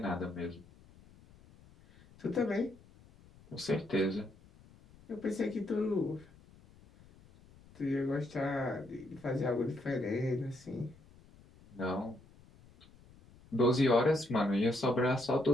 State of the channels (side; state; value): left; noise; rumble, 25 dB below the sound